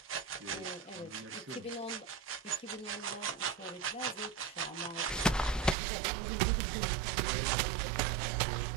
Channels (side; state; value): left; drops out; at 5.8 s